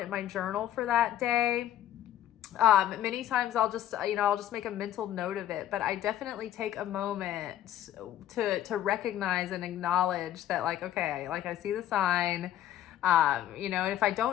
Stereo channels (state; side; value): quieter; right; 12.0 dB